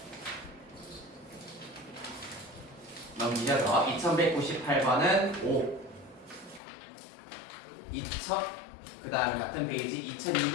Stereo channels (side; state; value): right; drops out; at 6.6 s